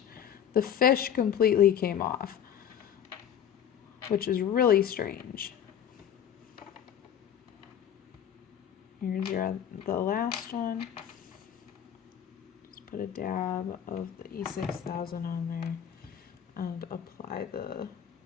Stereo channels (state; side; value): quieter; right; 9.2 dB